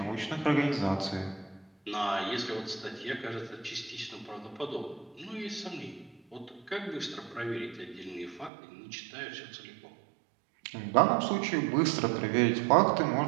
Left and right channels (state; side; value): drops out; left; at 8.5 s